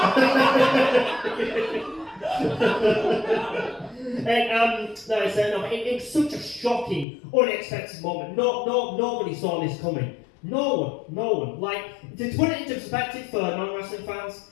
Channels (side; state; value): right; drops out; at 7.1 s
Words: It was such a shocking, unexpected moment. Nobody saw this coming. No one. Like, to put it into perspective for non-wrestling fans,